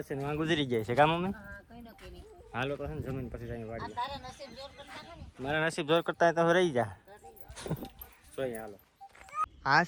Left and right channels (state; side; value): identical; both; correlation 1.00